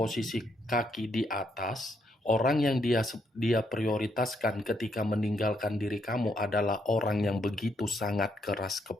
kaki di atas, orang yang dia prioritaskan ketika meninggalkan diri kamu adalah orang yang begitu sangat keras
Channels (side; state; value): both; normal; correlation 0.75